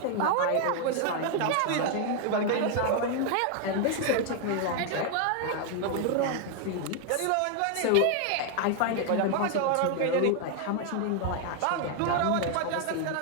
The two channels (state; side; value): different; both; correlation 0.01